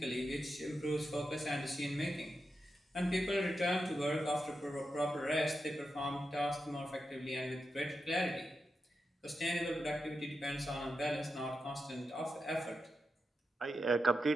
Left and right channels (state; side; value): normal; both; correlation 0.88